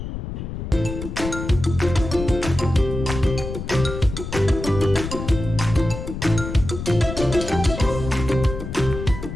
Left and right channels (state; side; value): noise; left; rumble, 7 dB below the sound